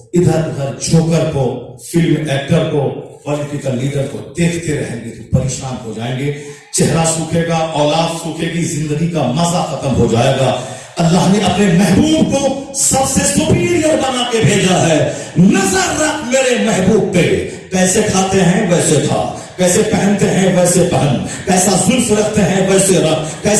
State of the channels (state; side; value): identical; both; correlation 1.00